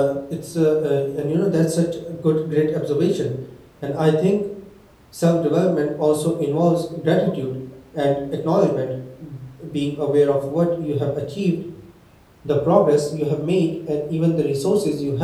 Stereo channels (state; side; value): identical; both; correlation 1.00